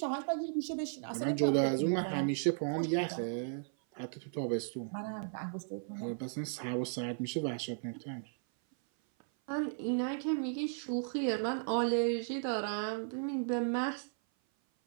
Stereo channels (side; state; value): left; silent; 54 dB below the other